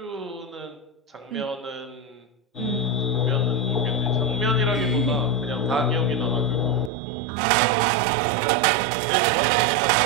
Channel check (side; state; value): left; drops out; at 6.9 s